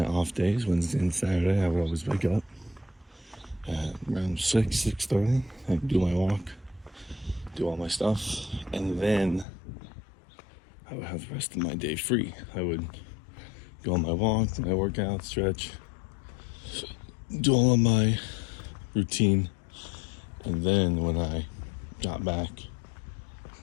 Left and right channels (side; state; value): right; drops out; at 9.5 s